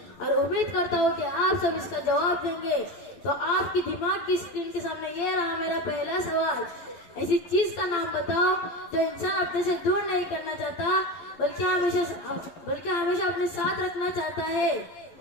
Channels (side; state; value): right; late; 12 ms